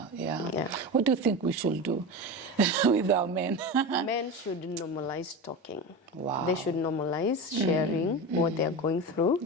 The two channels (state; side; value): normal; both; correlation 0.24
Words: What do you think we should do with our men? Men should normalize talking. Wow. They should normalize sharing what they're going through.